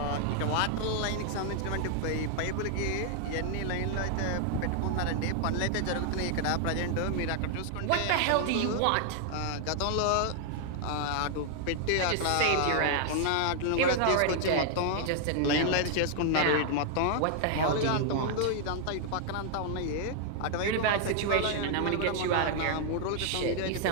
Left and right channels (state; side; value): different; both; correlation 0.00